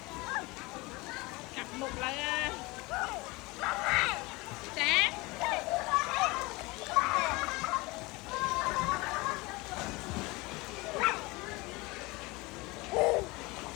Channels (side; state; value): right; quieter; 23.6 dB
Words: cặp một là sáng